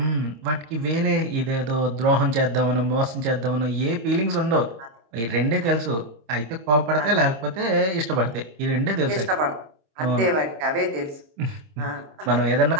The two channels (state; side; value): late; left; 26 ms